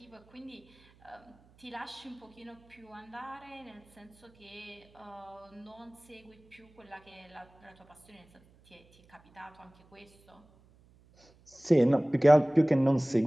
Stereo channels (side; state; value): right; noise; hum, 29 dB below the sound